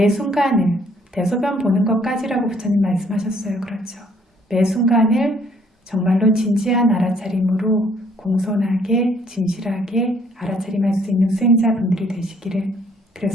순간을 대소변 보는 것까지라고 부처님 말씀하셨어요. 그렇죠. 매 순간을 정말로 진지한 알아차림으로 공손하게 진실하게 알아차림할 수 있는 수행자분들이 되시기를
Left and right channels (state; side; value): normal; both; correlation 0.64